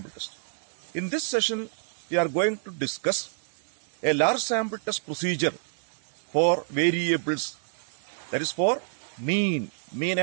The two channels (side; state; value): left; silent; digital silence